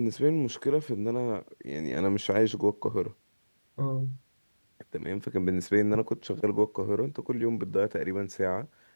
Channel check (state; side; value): inverted; both; correlation -1.00